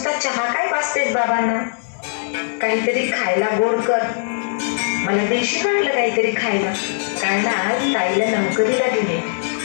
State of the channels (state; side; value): silent; right; digital silence